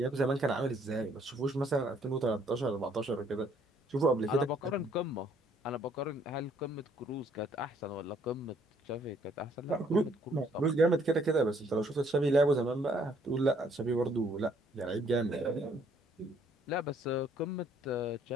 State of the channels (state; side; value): normal; both; correlation 0.64